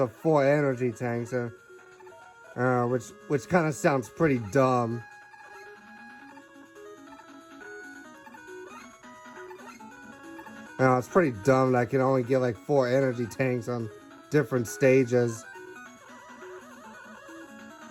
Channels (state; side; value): identical; both; correlation 1.00